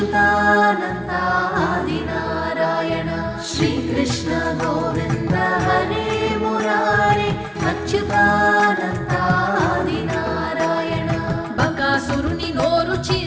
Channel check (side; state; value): both; identical; correlation 1.00